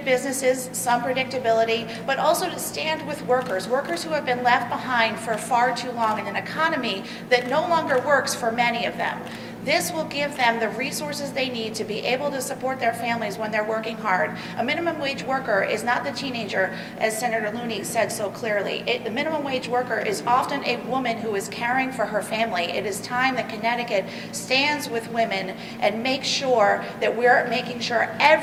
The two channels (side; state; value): both; identical; correlation 1.00